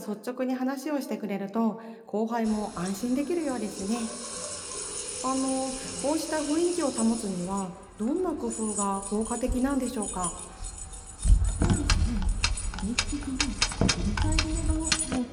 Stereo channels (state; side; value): identical; both; correlation 1.00